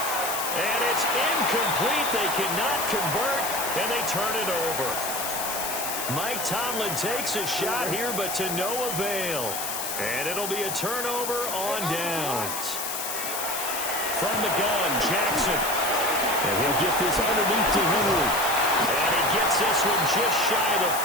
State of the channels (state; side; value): noise; left; hiss, 4 dB below the sound